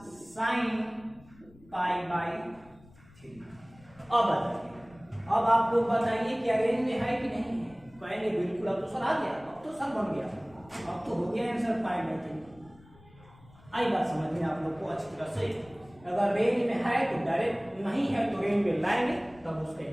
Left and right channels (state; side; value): noise; left; rumble, 25 dB below the sound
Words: साइन π/3। अब बताइए, अब आप लोग बताइए क्या रेंज में है कि नहीं है, कहेंगे बिल्कुल, अब तो सर आ गया, अब तो सर बन गया, अब तो हो गया आंसर π/3। आई बात समझ में आप लोग को अच्छी तरह से। अगर रेंज में है तो डायरेक्ट, नहीं है तो रेंज में लाएंगे, तब उसका